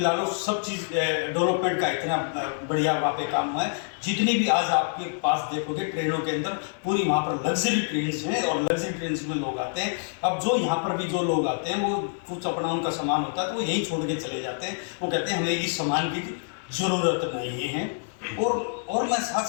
ला लो, सब चीज़ डेवलपमेंट का इतना बढ़िया वहाँ पे काम हुआ है। जितनी भी आज आपके पास देखोगे ट्रेनों के अंदर पूरी वहाँ पर लग्जरी ट्रेन्स हैं, और लग्जरी ट्रेन्स में लोग आते हैं। अब जो यहाँ पर भी जो लोग आते हैं, वो कुछ अपना उनका सामान होता है तो वो यहीं छोड़ के चले जाते हैं। वो कहते हैं हमें इस सामान की ज़रूरत नहीं है। और मैं साथ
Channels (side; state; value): right; silent; 60 dB below the other